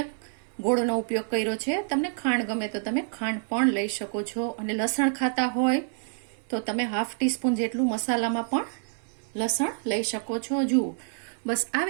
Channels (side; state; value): left; silent; 57 dB below the other